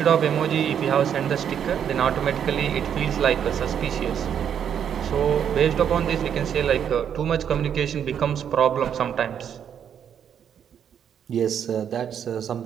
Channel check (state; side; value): quieter; left; 8.6 dB